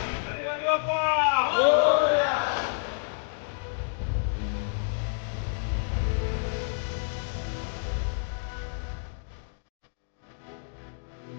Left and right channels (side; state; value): right; silent; digital silence